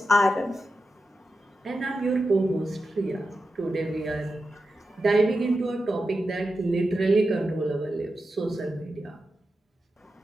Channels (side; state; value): both; normal; correlation 0.90